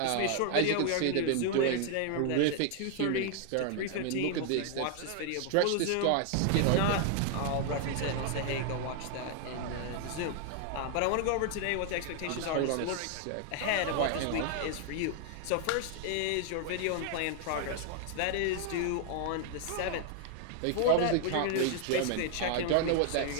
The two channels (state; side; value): different; both; correlation 0.00